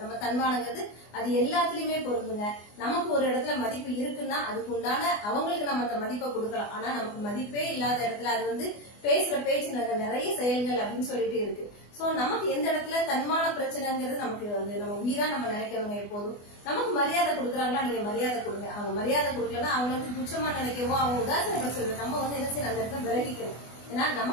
நம்ம தன்மானங்கிறது அது எல்லாத்துலயுமே பொருந்துங்க. நமக்கு ஒரு இடத்துல மதிப்பு இருக்குன்னா அதுக்கு உண்டான அவங்களுக்கு நம்ம அந்த மதிப்பை கொடுக்கலாம். ஆனா நமக்கு மதிப்பே இல்லாத இடத்துல அது பேசுற பேச்சு நிறைய செயல்கள் அப்படின்னு சொல்லிட்டு இருக்கு. சோ நமக்கு எந்த இடத்துல தன்மான பிரச்சனைங்கிறது நமக்கு நம்ம உயிரா நம்ம நினைக்கிறவங்க எப்போதும் நமக்கு மரியாதை கொடுக்குறாங்களா, நீங்க மரியாதை கொடுங்க. அவங்க மரியாதை கொடுக்கலன்னா அவங்க துச்சமா நினைக்கவோ அவங்க உதாசனப்படுத்துறது நம்ம என்ன செய்யணும், அந்த இடத்துல விலகிக்கணும். ஏன்னா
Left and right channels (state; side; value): late; right; 24 ms